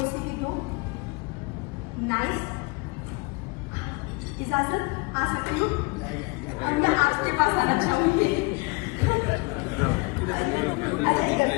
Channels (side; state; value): right; quieter; 27.8 dB